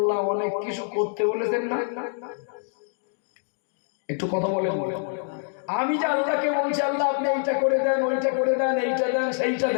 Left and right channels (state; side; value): silent; right; digital silence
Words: অনেক কিছু করতে বলেছেন না? একটু কথা বলেন। আমি যে আল্লাহকে বলছি আল্লাহ আপনি এইটা করে দেন, ওইটা করে দেন, এইটা দেন, সেইটা